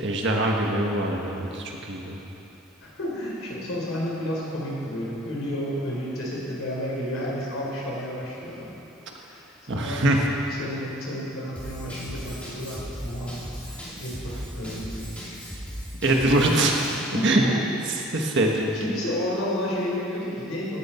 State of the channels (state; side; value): normal; both; correlation 0.52